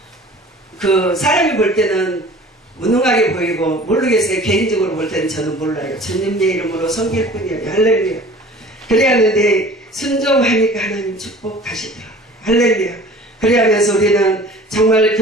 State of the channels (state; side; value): normal; both; correlation 0.45